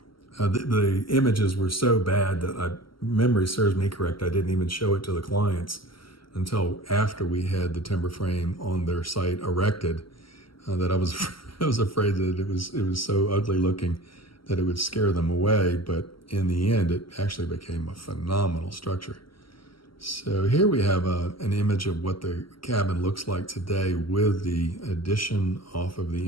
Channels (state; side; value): late; right; 0.74 ms